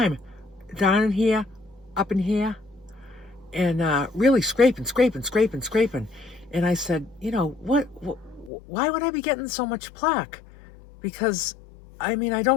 down in here, up in here, and really scraping. And I said, why would I be getting so much plaque? Because, I mean, I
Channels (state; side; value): drops out; right; at 8.5 s